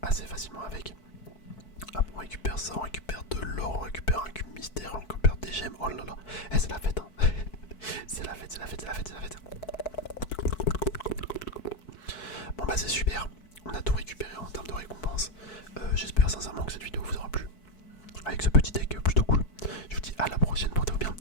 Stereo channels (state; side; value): late; right; 4.6 ms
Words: assez facilement avec. Hop, on récupère ça, on récupère de l'or, on récupère un cube mystère, on récupère des gemmes. Oh là là, c'est la fête. Hein. c'est la fête. Bon bah c'est super. On a tout récupéré en termes de récompense. sincèrement que cette vidéo vous aura plu. Avec ce petit deck plutôt cool. Je vous dis à la prochaine, portez-vous bien.